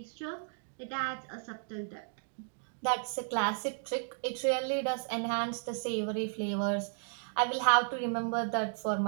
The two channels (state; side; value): silent; left; digital silence